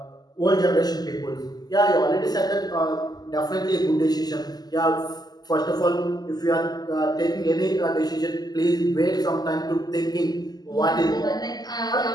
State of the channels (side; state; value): right; late; 0.20 ms